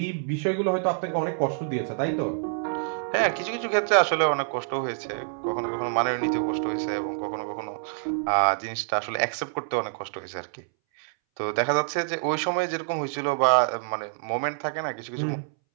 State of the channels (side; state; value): left; silent; 60 dB below the other